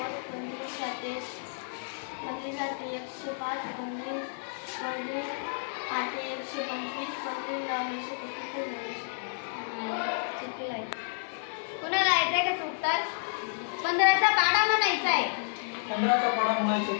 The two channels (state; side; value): silent; right; 56 dB below the other